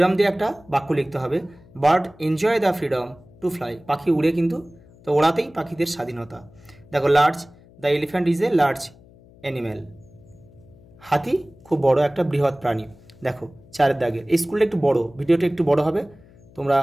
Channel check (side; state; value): left; noise; hum, 25 dB below the sound